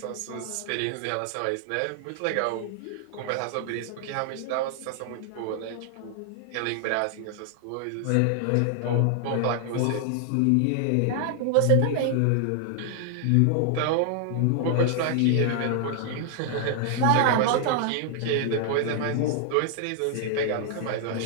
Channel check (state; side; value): different; both; correlation 0.00